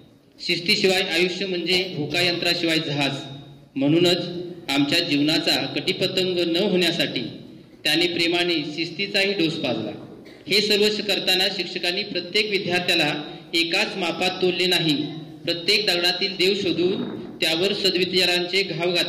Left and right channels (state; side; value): identical; both; correlation 1.00